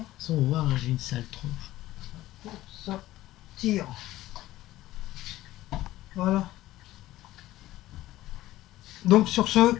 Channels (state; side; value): quieter; right; 15.7 dB